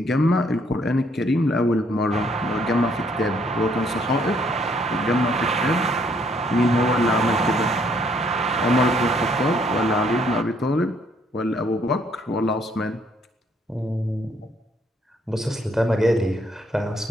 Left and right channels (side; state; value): both; normal; correlation 0.67